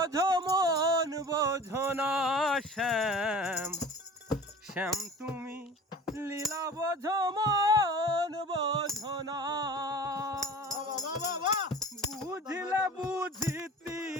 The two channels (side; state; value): both; normal; correlation 0.40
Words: মন বোঝো না। শ্যাম শ্যাম তুমি লীলা বোঝো মন বোঝো না। বুঝিলে বুঝিতি